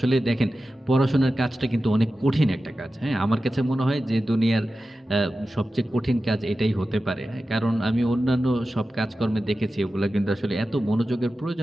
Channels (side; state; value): both; normal; correlation 0.94